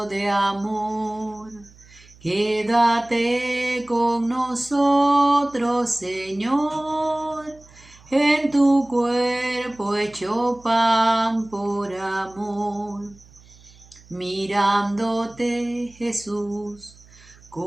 de amor. Quédate con nosotros, Señor, en tu cuerpo hecho pan por amor. Mirándote, Jesús,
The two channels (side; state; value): right; noise; hum, 25 dB below the sound